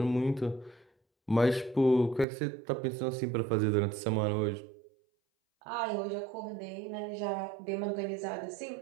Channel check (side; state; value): left; drops out; at 2.2 s